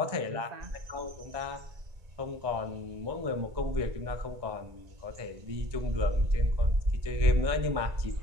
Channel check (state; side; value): late; left; 1.9 ms